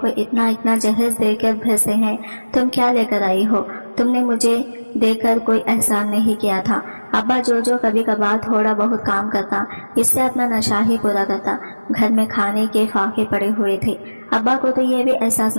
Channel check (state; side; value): inverted; both; correlation -1.00